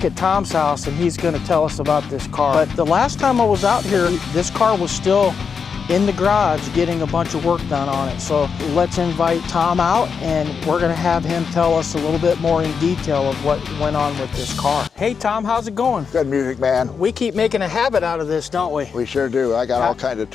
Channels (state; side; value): quieter; right; 6.1 dB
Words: at Tom's house and he's gonna tell us about this car. But the last time I was out here, this car was still in the garage getting a bunch of work done on it. So let's invite Tom out and we're gonna have him tell us a little bit more in detail of what went on with this car. Hey Tom, how's it going? Good music, man. We keep making a habit out of this, don't we? We sure do. I got all kinds of